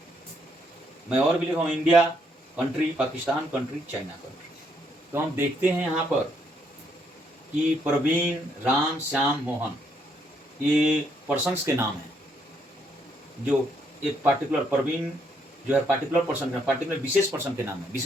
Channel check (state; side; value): normal; both; correlation 0.73